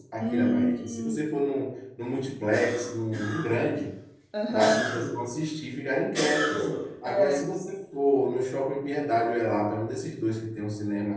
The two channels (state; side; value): identical; both; correlation 1.00